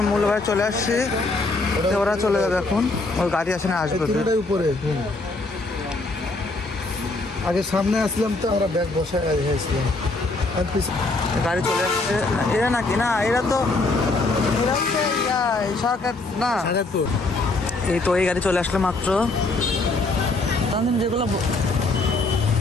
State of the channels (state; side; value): quieter; right; 3.2 dB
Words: মূল ভাই চলে আসছে, ওরা চলে যাবে এখন। ওর গাড়ি আসে না, আসবে উপরে। আগে সামনে আসলাম তো আমরা ব্যাগ বসায় আসলাম, গাড়ি চলে আসছে। এরা নাকি না, এরা তো সরকার না। এই তো এই গাড়ি চলে আসলো মাত্র। তানজিম যেগুলো